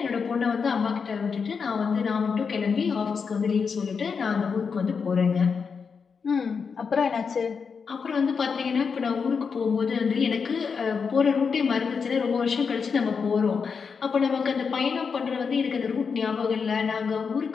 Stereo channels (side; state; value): right; quieter; 5.7 dB